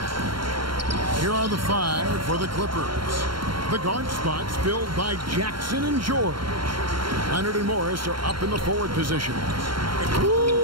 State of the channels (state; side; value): late; left; 0.73 ms